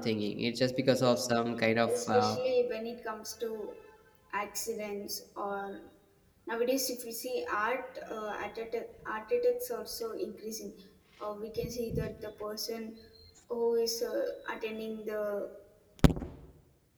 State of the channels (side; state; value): both; identical; correlation 1.00